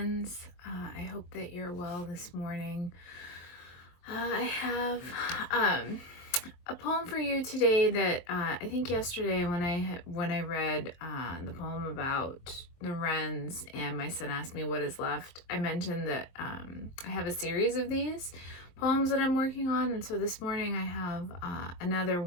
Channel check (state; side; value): late; right; 23 ms